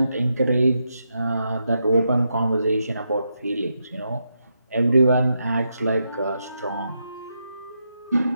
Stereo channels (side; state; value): both; inverted; correlation -0.83